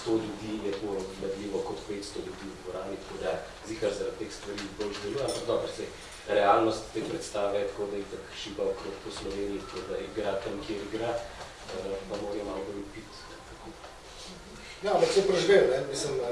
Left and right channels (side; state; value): both; identical; correlation 1.00